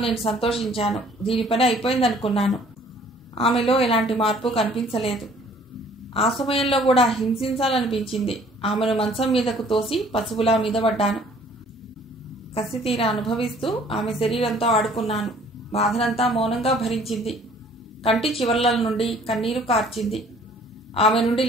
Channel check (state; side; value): normal; both; correlation 0.56